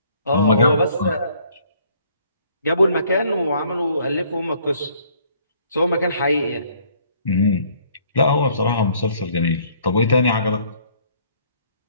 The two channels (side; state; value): both; inverted; correlation -0.61